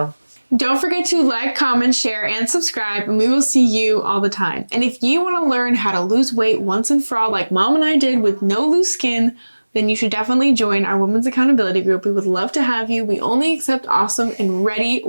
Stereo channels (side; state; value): both; inverted; correlation -1.00